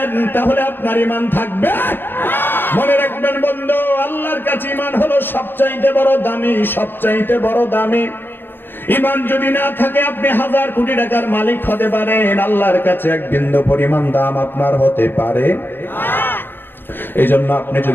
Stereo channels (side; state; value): right; late; 0.099 ms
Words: তাহলে আপনার ঈমান থাকবে? মনে রাখবেন বন্ধু, আল্লাহর কাছে ঈমান হলো সবচাইতে বড় দামি, সবচাইতে বড় দামি। ঈমান যদি না থাকে, আপনি 1000 কোটি টাকার মালিক হতে পারেন, আল্লাহর কাছে এক বিন্দু পরিমাণ দাম আপনার হতে পারে। এই জন্য আপনি